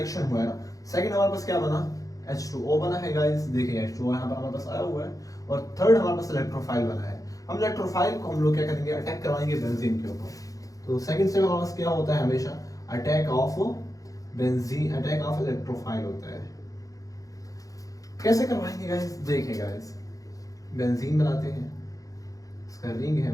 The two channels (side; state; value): right; late; 0.17 ms